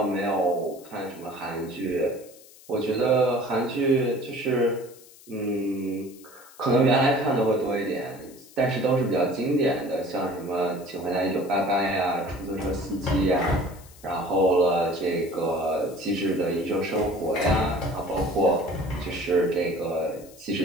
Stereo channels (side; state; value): left; noise; hiss, 22 dB below the sound